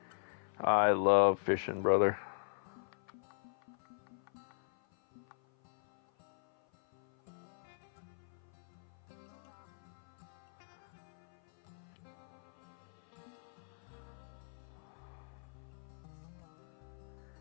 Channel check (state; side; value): silent; right; 51 dB below the other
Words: I love fishing, brother.